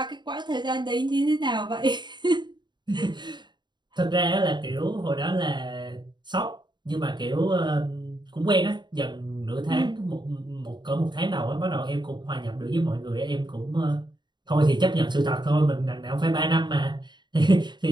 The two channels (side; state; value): left; late; 0.22 ms